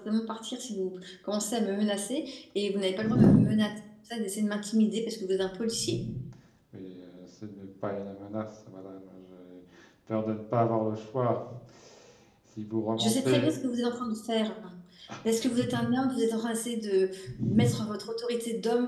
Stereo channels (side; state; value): both; identical; correlation 1.00